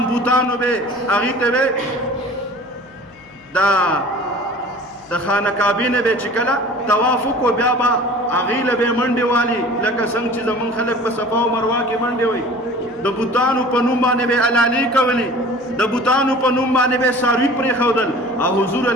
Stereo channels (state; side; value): noise; left; hum, 29 dB below the sound